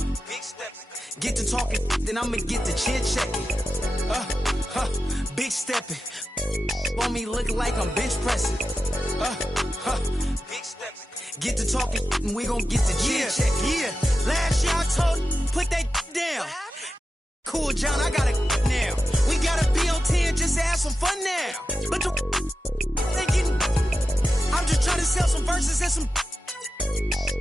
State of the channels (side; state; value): both; normal; correlation 0.91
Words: stepping. Get to talking, then I'ma get to chin checking. Big stepping. For me, look like I'm bench pressing. Big stepping. Get to talking, and we gon' get to chin checking. Yeah, last year I told put that down. Cool, John, I got it now. We gotta be on 10 just to have some fun now. But the they getting, I'm just trying to sell some verses and some.